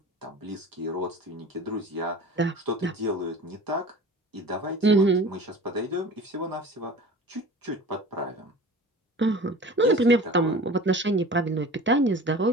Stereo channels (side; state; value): both; normal; correlation 0.40